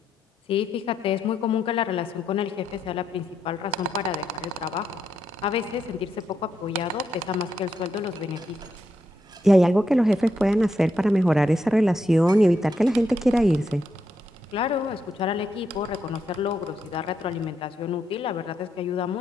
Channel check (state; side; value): normal; both; correlation 0.81